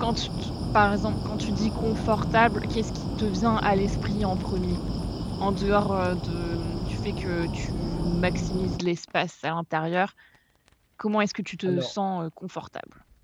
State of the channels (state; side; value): identical; both; correlation 1.00